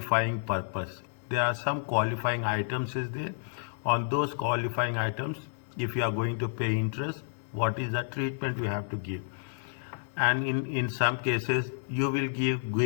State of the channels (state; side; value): silent; right; digital silence